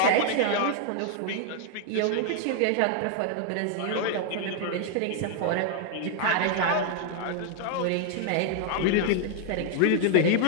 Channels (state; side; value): different; both; correlation 0.00